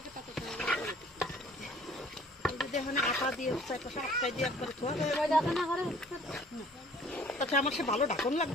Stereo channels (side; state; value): both; normal; correlation 0.54